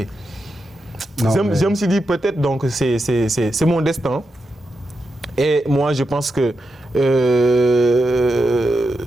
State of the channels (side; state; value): both; normal; correlation 0.87